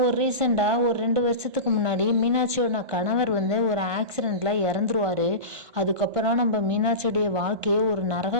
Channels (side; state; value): left; late; 1.2 ms